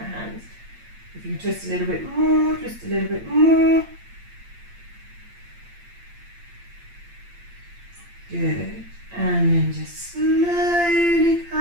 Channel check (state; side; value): late; left; 8.7 ms